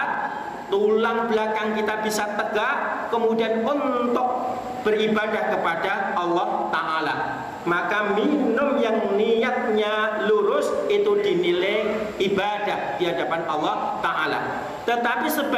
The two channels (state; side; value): identical; both; correlation 1.00